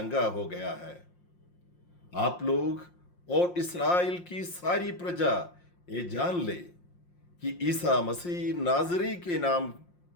हो गया है। आप लोग और इस्राएल की सारी प्रजा ये जान ले कि ईसा मसीह नाजरी के नाम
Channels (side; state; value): right; late; 5.7 ms